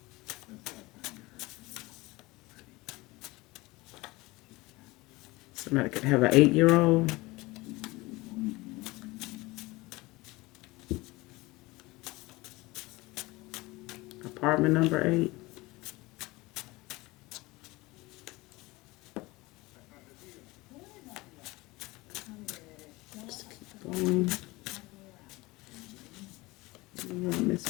Somebody could have an 8-year-old. Apartment number 8. Just keep going. More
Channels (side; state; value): right; quieter; 21.7 dB